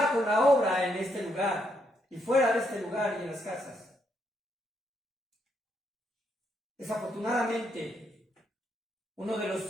con la obra en este lugar y fuera de este lugar y en las casas. Desafortunadamente, uno de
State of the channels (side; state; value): both; normal; correlation 0.77